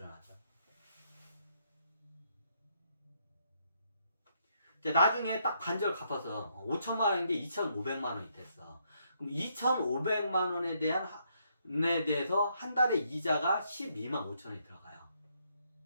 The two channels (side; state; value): both; inverted; correlation -0.74